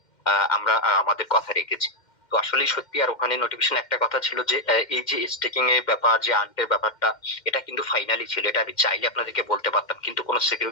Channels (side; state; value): right; late; 2.1 ms